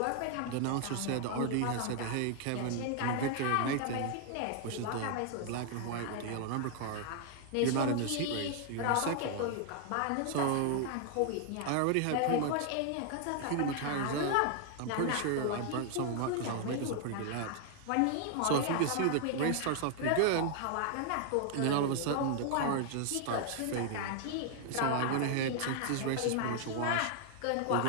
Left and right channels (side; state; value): both; different; correlation 0.00